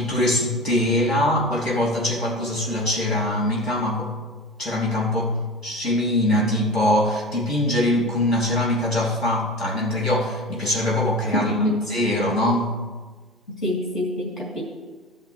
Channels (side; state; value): both; normal; correlation 0.32